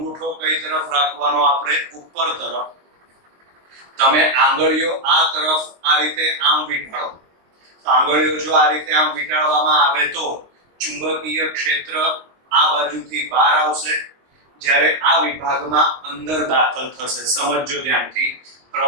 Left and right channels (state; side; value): late; left; 22 ms